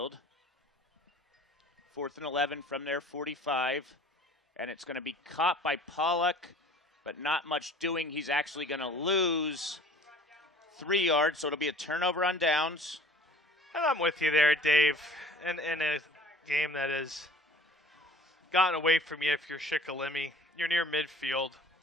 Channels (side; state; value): both; normal; correlation 0.47